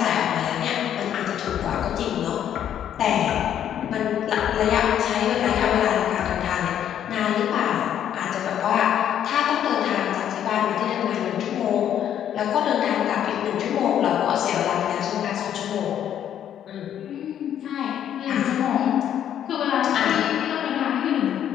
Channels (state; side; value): quieter; right; 10.1 dB